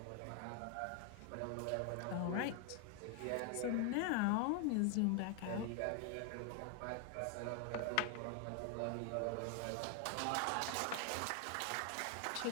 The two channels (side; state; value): both; different; correlation 0.01